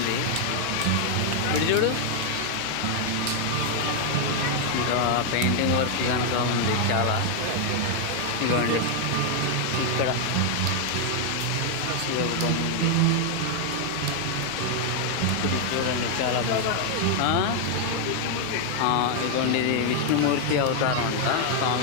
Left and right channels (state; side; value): different; both; correlation 0.00